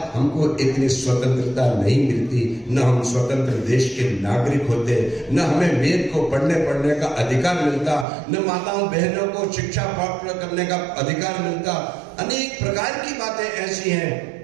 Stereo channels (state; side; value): drops out; left; at 8.1 s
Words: हमको इतनी स्वतंत्रता नहीं मिलती, न हम स्वतंत्र देश के नागरिक होते, न हमें वेद को पढ़ने का अधिकार मिलता, न माताओं बहनों को शिक्षा प्राप्त करने का अधिकार मिलता। अनेक प्रकार की बातें ऐसी हैं